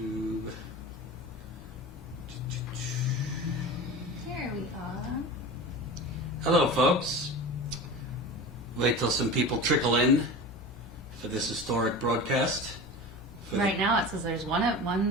Here we are. Hello, folks. Wait till some people trickle in for this historic broadcast. Right now it says there's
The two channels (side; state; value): both; normal; correlation 0.31